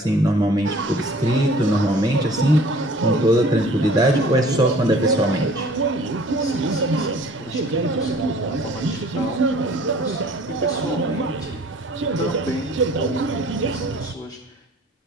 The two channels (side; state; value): both; normal; correlation 0.51